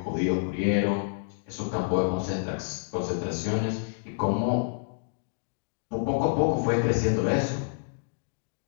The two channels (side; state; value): right; silent; digital silence